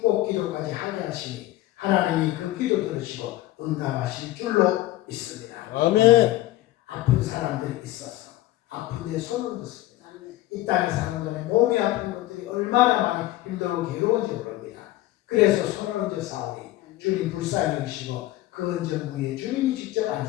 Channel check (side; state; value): right; quieter; 16.2 dB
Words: 기도까지 하게 하시니 하나님이 그 기도 들으시고 응답하실 줄로 믿습니다. 아멘. 아픈 사람들이 있어서 아픈 데 손을 뒀습니다. 이 땅의 사람들의 몸이 아픈 것들이 얼마나 많이 힘들고 괴로운지 모릅니다. 그래서 손을 얹어 싸우니 주님 불쌍히 여기시고 그 언정부에 주님이 직접